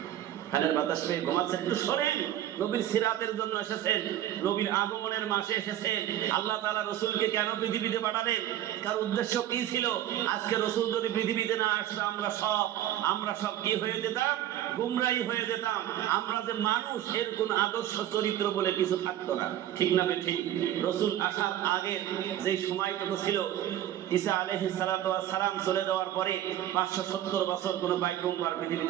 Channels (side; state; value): left; quieter; 12.3 dB